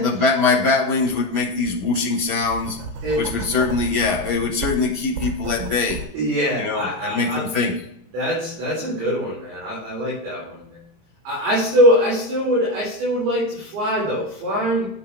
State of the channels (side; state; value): left; late; 18 ms